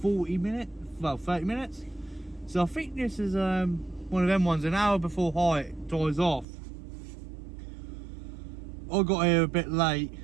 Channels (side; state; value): left; drops out; at 6.5 s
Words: 40 minutes, well 30 minutes. So I think this is one of them ones, an hour before high dies off. I got here a bit late